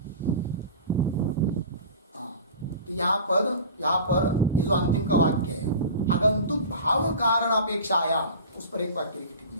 हाँ, तो यहां पर ये जो अंतिम का वाक्य है, आगंतुक भाव कारण अपेक्षायाम, उस पर एक वाक्य की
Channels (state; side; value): inverted; both; correlation -0.35